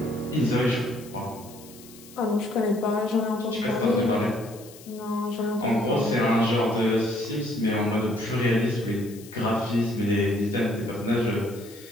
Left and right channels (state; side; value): noise; left; hiss, 20 dB below the sound